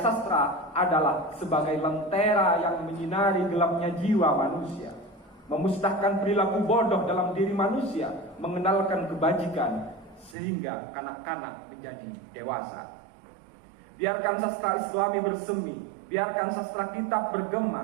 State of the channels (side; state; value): left; drops out; at 10.4 s